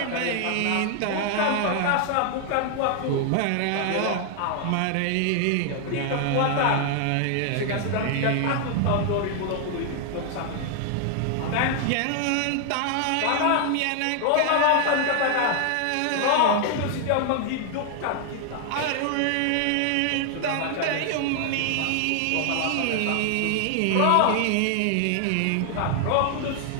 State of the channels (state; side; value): different; both; correlation 0.00